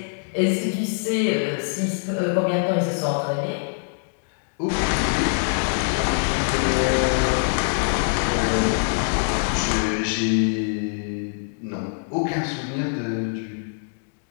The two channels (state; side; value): silent; right; digital silence